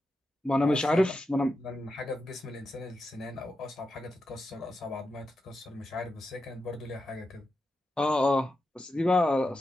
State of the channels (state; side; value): normal; both; correlation 0.89